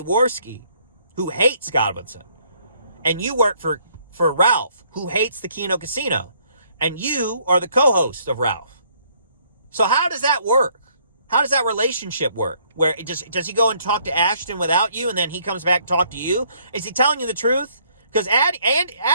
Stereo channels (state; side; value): inverted; both; correlation -0.65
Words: who hates Godwinson. And you work for Ralph, who hates the Keno Casino. And you are the co-host of Ralph. So how does that work? How does that relationship work? Where does he go and talk to Ashton without you, and then he comes back and talk to you? Is he telling you the truth? Because